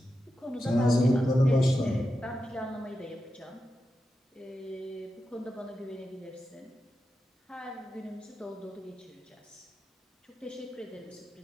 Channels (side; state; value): both; normal; correlation 0.90